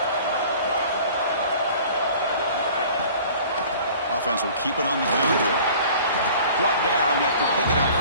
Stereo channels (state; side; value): inverted; both; correlation -0.47